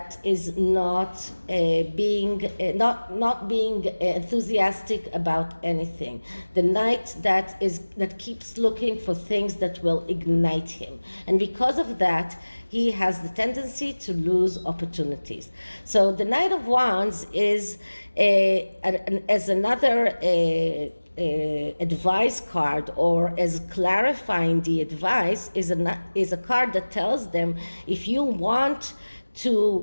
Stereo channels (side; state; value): both; inverted; correlation -1.00